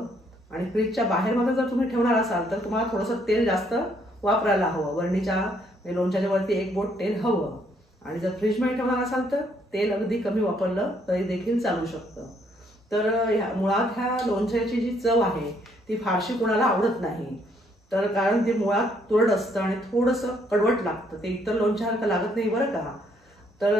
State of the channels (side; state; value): both; normal; correlation 0.69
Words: आणि फ्रीजच्या बाहेर मध्ये जर तुम्ही ठेवणार असाल तर तुम्हाला थोडंसं तेल जास्त वापरायला हवं. बरणीच्या लोणच्याच्या वरती 1 बोट तेल हवं. आणि जर फ्रीजमध्ये ठेवणार असाल तर तेल अगदी कमी वापरलं तरी देखील चालू शकतं. तर मुळात ह्या लोणच्याची जी चव आहे ती फारशी कोणाला आवडत नाही. तर कारण ते मुळात तुरट असतं आणि थोडंसं कडवट लागतं. ते इतर लोणच्यासारखं लागत नाही बरं का.